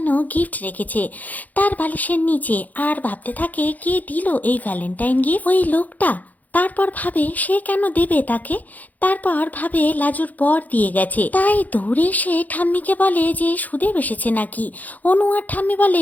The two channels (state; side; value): late; right; 0.080 ms